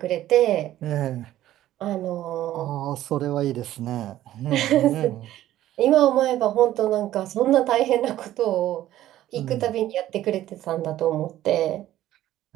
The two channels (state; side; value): quieter; left; 13.6 dB